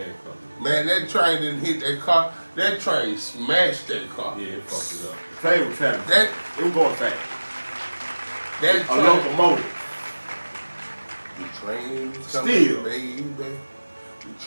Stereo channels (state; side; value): inverted; both; correlation -1.00